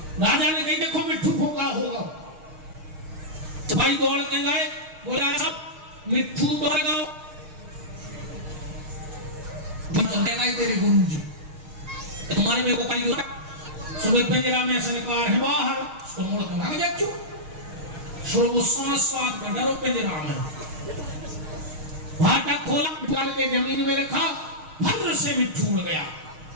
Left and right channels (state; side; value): late; left; 6.4 ms